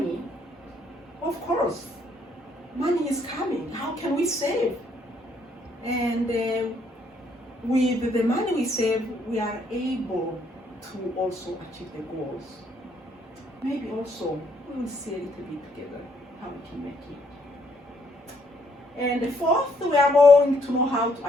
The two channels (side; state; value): both; normal; correlation 0.69